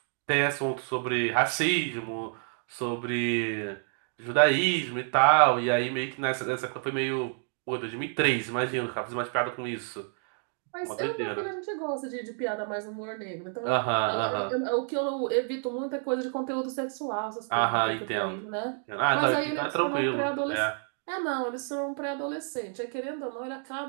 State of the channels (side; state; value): left; silent; 59 dB below the other